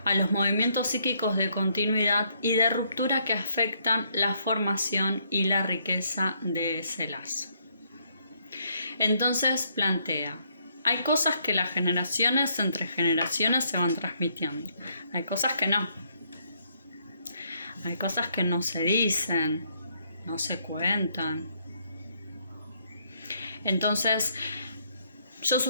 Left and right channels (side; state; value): both; inverted; correlation -0.71